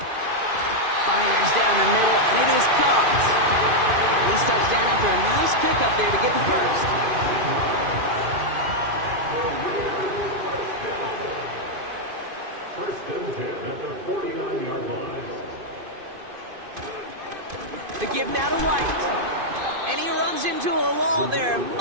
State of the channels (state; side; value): late; left; 2.5 ms